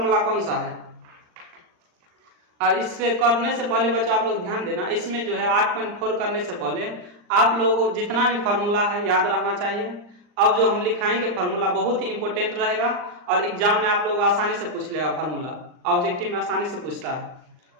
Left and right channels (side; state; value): left; late; 39 ms